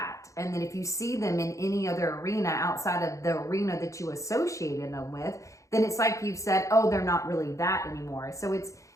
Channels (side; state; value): right; late; 0.15 ms